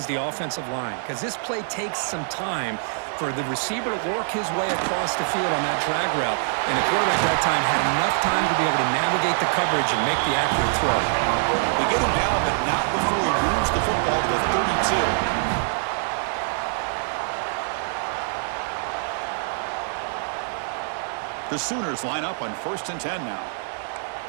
the offensive line, because this play takes some time for the receiver to work his way across the field on that drag route. And the quarterback that time had enough time to be able to navigate the coverage and make the accurate throw. They get him down, but not before he moves the football to the 32. The Sooners line up on 1st and 10 now.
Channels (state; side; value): silent; left; 62 dB below the other